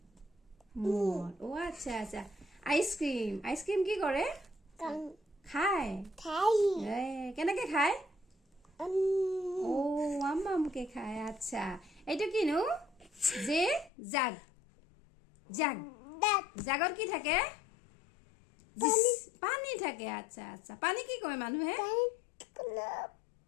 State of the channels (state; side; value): drops out; right; at 13.9 s